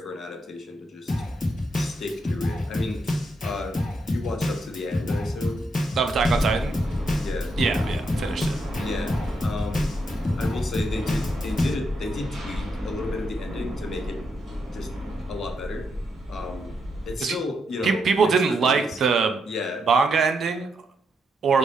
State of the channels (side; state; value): both; normal; correlation 0.80